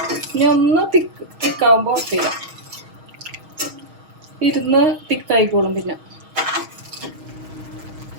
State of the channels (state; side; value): late; left; 6.4 ms